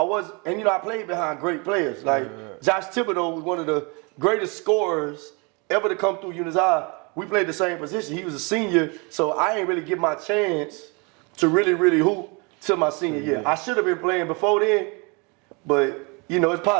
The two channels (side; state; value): left; quieter; 30.8 dB